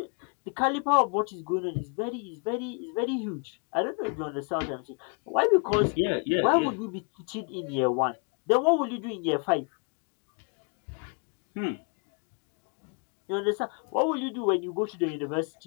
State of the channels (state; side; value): quieter; right; 37.6 dB